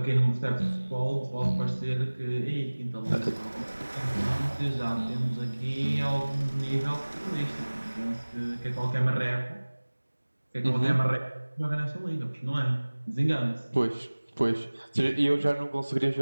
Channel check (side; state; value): both; inverted; correlation -1.00